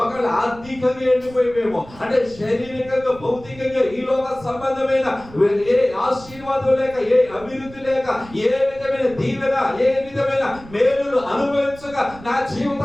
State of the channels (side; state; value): right; noise; rumble, 19 dB below the sound